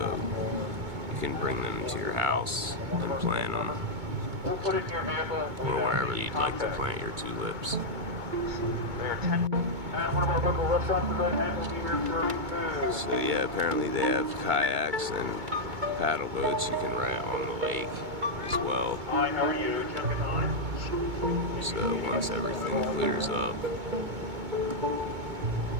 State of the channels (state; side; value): late; left; 2.2 ms